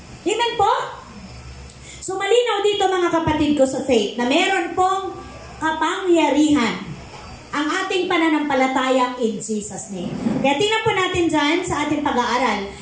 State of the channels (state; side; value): identical; both; correlation 1.00